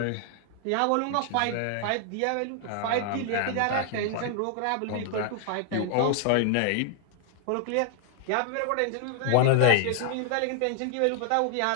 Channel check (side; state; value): both; different; correlation 0.00